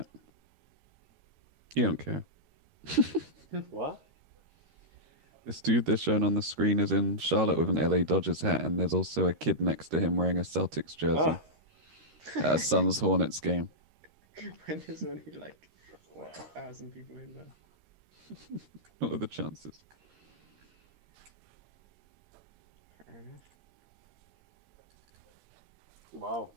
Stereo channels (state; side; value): late; left; 13 ms